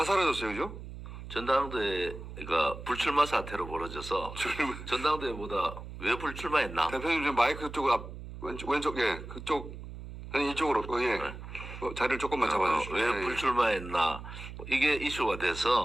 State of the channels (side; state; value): right; noise; hum, 11 dB below the sound